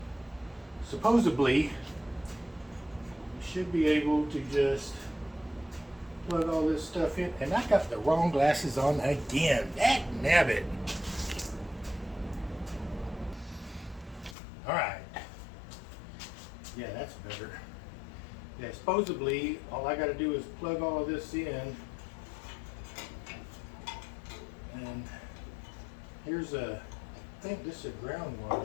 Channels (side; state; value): right; drops out; at 14.4 s